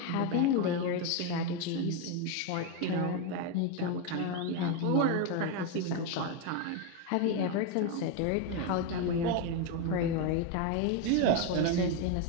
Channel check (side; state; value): both; different; correlation 0.02